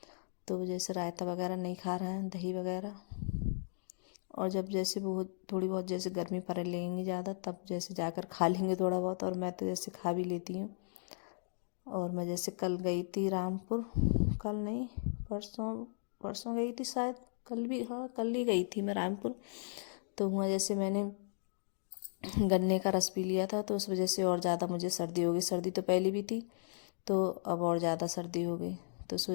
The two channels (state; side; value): silent; right; digital silence